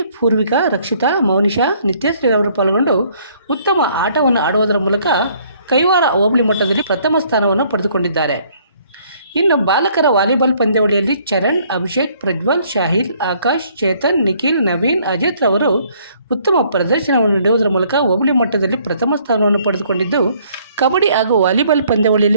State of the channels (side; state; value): both; inverted; correlation -0.63